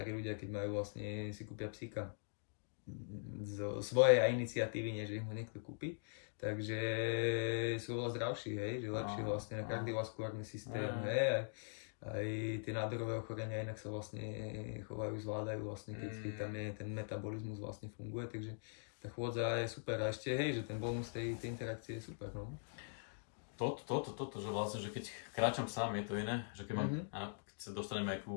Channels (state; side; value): silent; right; digital silence